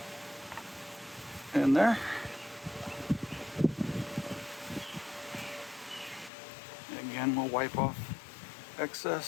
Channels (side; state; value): right; drops out; at 6.3 s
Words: In there. Again, we'll wipe off